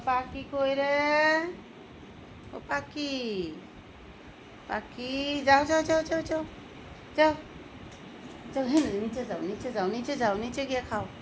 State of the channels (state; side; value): identical; both; correlation 1.00